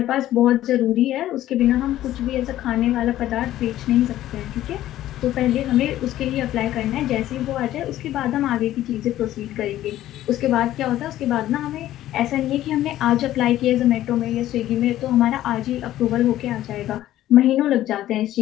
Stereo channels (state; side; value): quieter; right; 13.6 dB